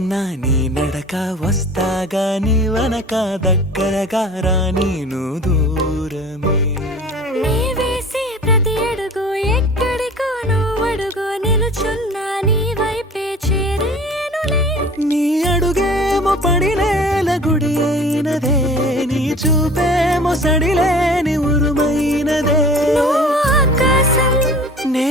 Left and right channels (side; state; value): both; normal; correlation 0.43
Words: నీ నడక వస్తాగా, నీ వనక దగ్గరగా రాని నువ్వు దూరమే. నీ వేసే ప్రతి అడుగు ఎక్కడికో నువ్వు అడుగు, నిలుచున్నా నీ వైపే చేరేనులే. నీ అడుగేమో పడినేల గుడి అయినదే, నీ చూపేమో సడిలేని ఉరుమైనదే. నువ్వు ఆకాశం,